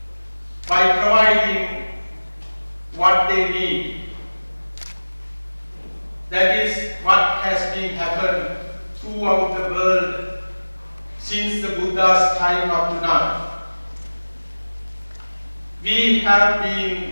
by providing what they need. That is what has been happened throughout the world since the Buddha's time up to now. We have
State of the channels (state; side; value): inverted; both; correlation -1.00